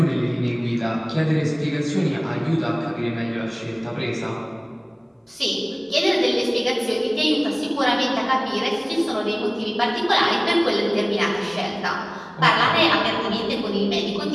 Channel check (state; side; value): identical; both; correlation 1.00